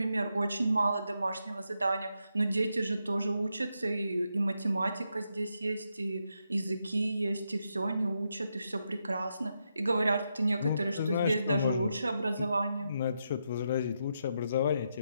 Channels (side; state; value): both; inverted; correlation -0.83